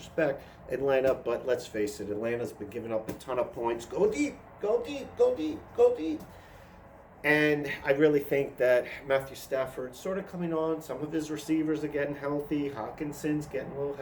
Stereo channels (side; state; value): both; identical; correlation 1.00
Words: Atlanta, but let's face it, Atlanta's been giving up a ton of points. Go deep. And I really think that Matthew Stafford's sort of coming on. Some of his receivers are getting healthy. Hawkinson's getting a little